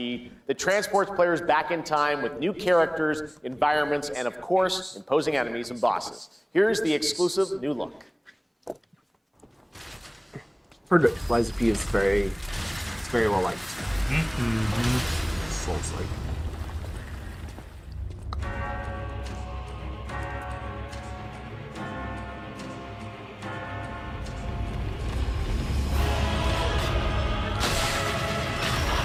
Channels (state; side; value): identical; both; correlation 1.00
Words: that transports players back in time with new characters, environments, and of course, imposing enemies and bosses. Here's the exclusive new look. Heard Lies of P is very well liked. Souls-like.